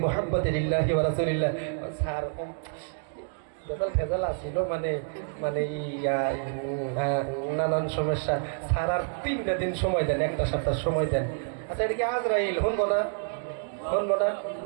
মুহাম্মাদিন লিল্লাহি ওয়া রাসূলিল্লাহ। স্যার ফেজাল আসছিল, মানে নানান সমস্যা। স্যার আর 3টা দিন সময় দেন, একটা সপ্তাহ সময় দেন। আচ্ছা, এটা কি আজরাইল শুনবো না?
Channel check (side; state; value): left; silent; digital silence